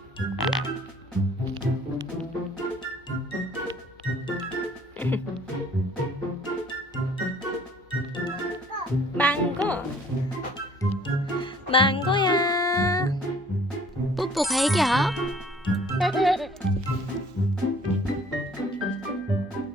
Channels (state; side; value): normal; both; correlation 0.56